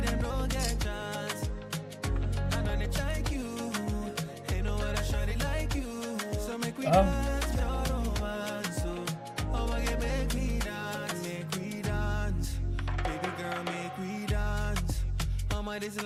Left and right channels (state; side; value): identical; both; correlation 1.00